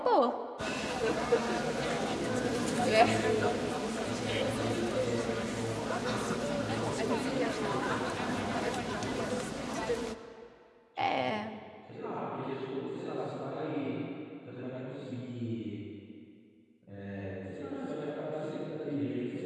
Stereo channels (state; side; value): identical; both; correlation 1.00